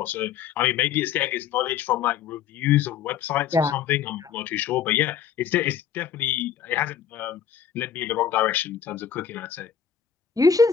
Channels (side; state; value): right; quieter; 8.1 dB